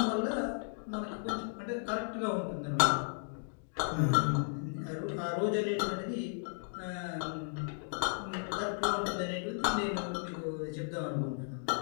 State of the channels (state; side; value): silent; right; digital silence